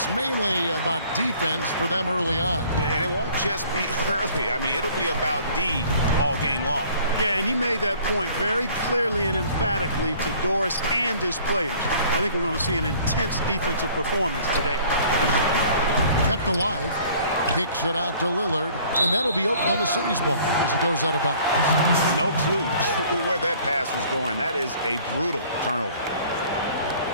mainly about defense for them early on. And it won't just be early. I mean, it'll be about D all game long. Yeah, and he made that point very clearly and emphatically to Doris and his players. I think we're going to see an intense defensive performance today. Kept alive. Kicks it out to Lillard, and that'll be Oklahoma City's ball as it goes out of bounds. No clue where that pass was going. That is a brutal turnover.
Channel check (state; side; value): inverted; both; correlation -0.54